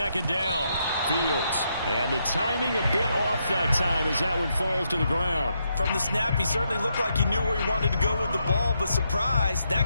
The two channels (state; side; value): inverted; both; correlation -0.80